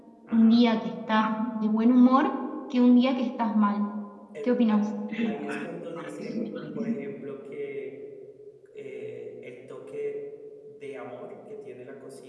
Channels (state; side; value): identical; both; correlation 1.00